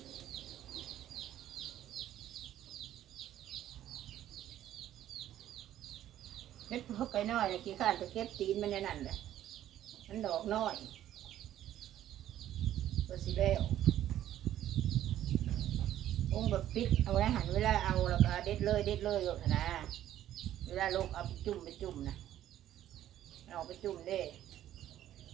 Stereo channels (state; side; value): quieter; left; 12.2 dB